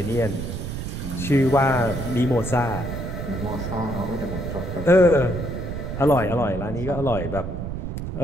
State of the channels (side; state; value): right; noise; rumble, 6 dB below the sound